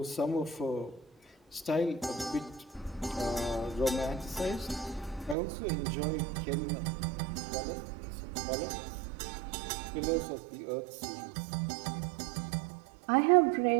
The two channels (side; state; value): left; drops out; at 5.4 s